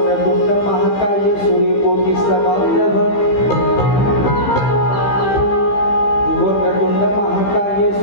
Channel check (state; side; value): late; right; 15 ms